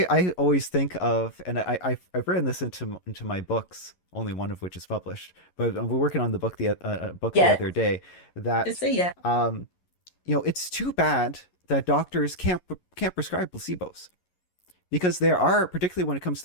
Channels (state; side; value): late; right; 11 ms